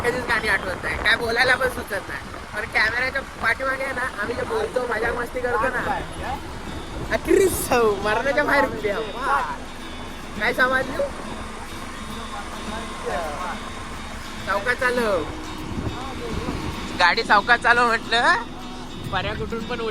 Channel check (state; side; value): identical; both; correlation 1.00